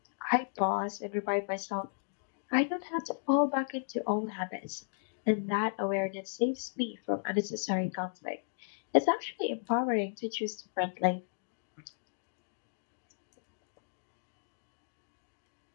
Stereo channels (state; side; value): silent; right; digital silence